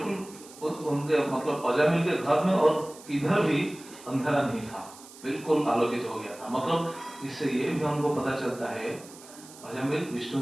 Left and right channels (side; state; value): right; noise; hiss, 19 dB below the sound